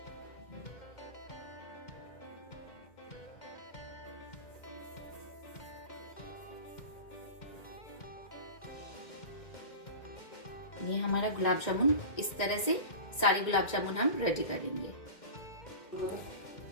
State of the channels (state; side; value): late; right; 2.1 ms